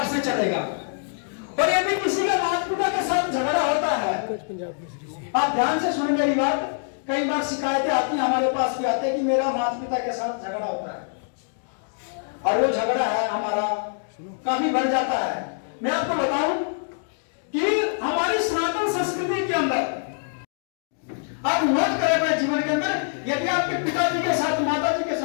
से चलेगा। और यदि किसी का माता पिता के साथ झगड़ा होता है, आप ध्यान से सुन मेरी बात, कई बार शिकायतें आती हैं, हमारे पास भी आते हैं कि मेरा माता पिता के साथ झगड़ा होता है, और वो झगड़ा है हमारा काफी बढ़ जाता है। मैं आपको बताऊं कि हमारी सनातन संस्कृति के अंदर आप नोट करें अपने जीवन के अंदर, यदि आपके पिताजी के साथ माता जी के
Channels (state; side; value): silent; right; digital silence